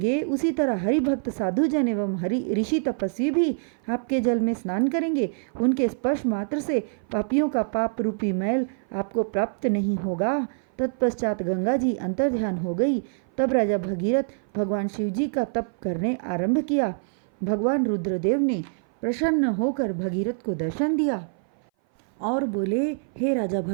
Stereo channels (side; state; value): left; silent; 58 dB below the other